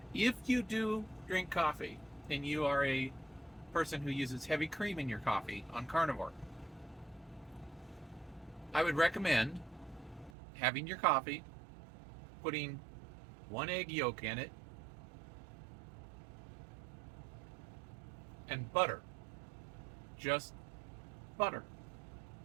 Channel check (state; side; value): drops out; left; at 10.3 s